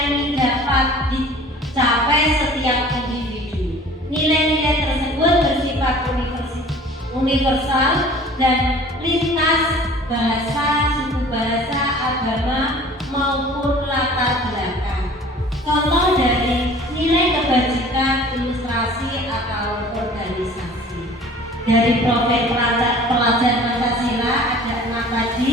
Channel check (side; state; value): both; normal; correlation 0.47